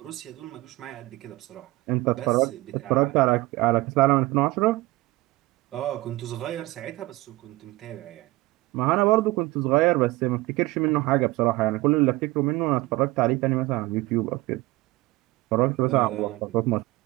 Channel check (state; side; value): quieter; left; 19.7 dB